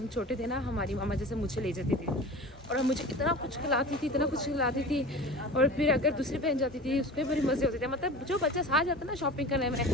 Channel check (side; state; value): both; normal; correlation 0.35